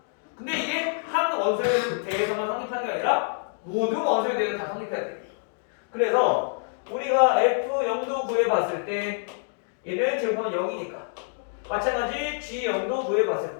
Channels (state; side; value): silent; right; digital silence